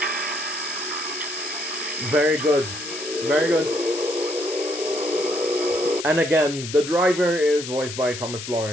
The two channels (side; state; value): left; noise; hiss, 9 dB below the sound